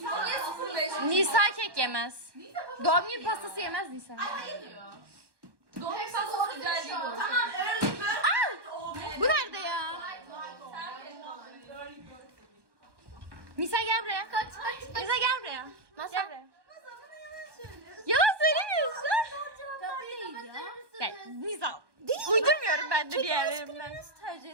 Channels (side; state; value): left; late; 1.2 ms